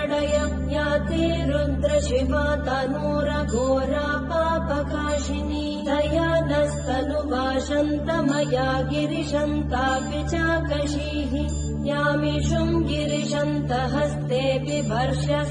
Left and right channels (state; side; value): identical; both; correlation 1.00